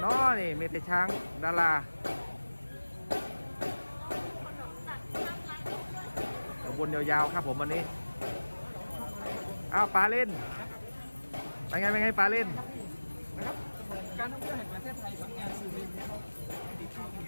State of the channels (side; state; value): both; inverted; correlation -1.00